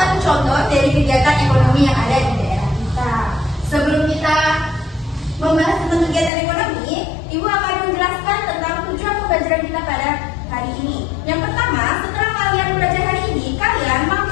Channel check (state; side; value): drops out; right; at 6.3 s